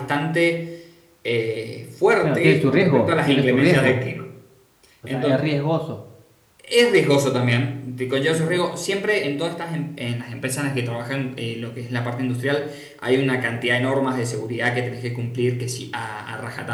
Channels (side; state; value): both; identical; correlation 1.00